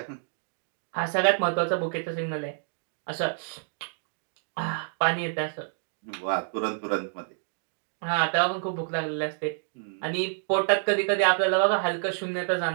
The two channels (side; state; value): left; silent; digital silence